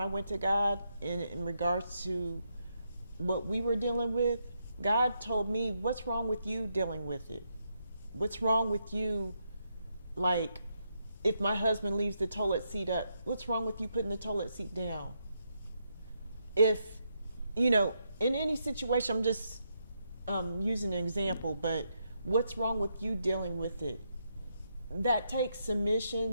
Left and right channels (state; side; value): inverted; both; correlation -0.80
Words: went to God in regards to what we were dealing with. God told me, what's wrong with you dealing with it? What's wrong with you, like, if my husband leaves the toilet seat up, what's wrong with you putting the toilet seat down? If, in any situation, I'm just using an example, but what's wrong with you dealing with it? That takes